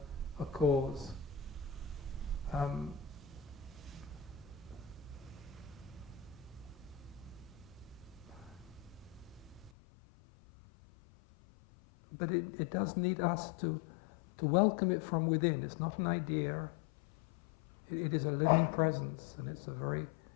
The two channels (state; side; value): drops out; right; at 9.7 s